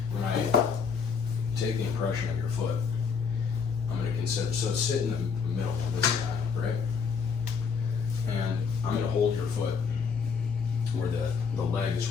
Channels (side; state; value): right; quieter; 5.8 dB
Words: When I take the impression of your foot, I'm going to consider, so sit in the middle of this guy, right? And I'm going to hold your foot where the leg is